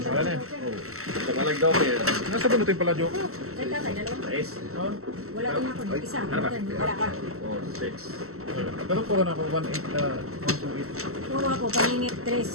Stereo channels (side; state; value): left; late; 0.63 ms